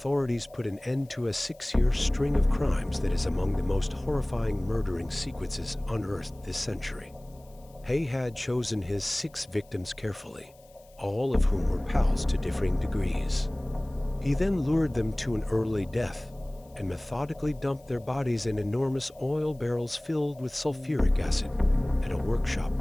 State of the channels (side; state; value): left; noise; hiss, 29 dB below the sound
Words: put an end to a 6-year string of crimes that is among the most horrifying murdering sequences unearthed this century. Haigh had chosen his 6 victims carefully, all of whom were pals to differing degrees. He then lured them to an early death and methodically dumped their bodies in enormous oil barrels filled with sulfuric acid at a workshop